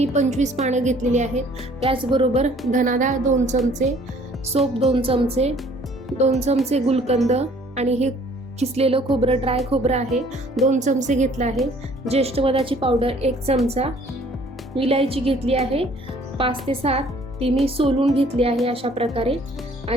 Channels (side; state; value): both; normal; correlation 0.57